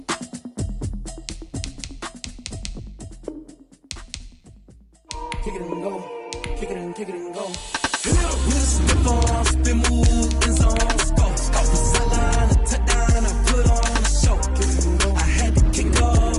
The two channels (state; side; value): identical; both; correlation 1.00